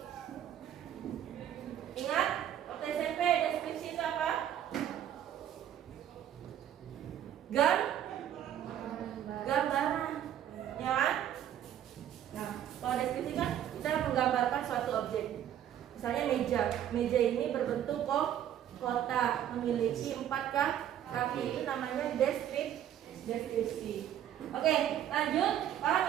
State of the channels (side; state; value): left; quieter; 10.7 dB